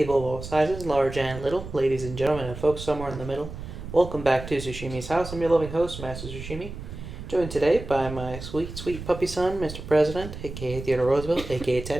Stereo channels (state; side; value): noise; right; rumble, 10 dB below the sound